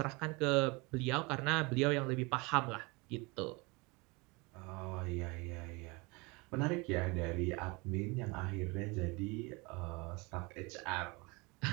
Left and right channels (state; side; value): quieter; left; 26.7 dB